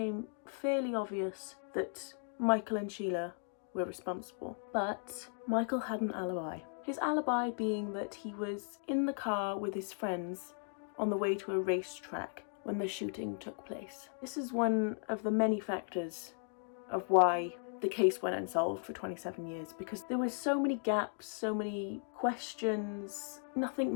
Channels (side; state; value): right; silent; 53 dB below the other